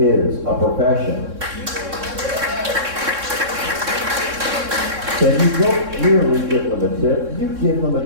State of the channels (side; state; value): left; late; 3.6 ms